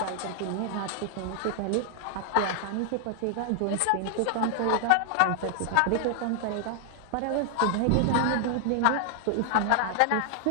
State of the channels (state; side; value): different; both; correlation 0.00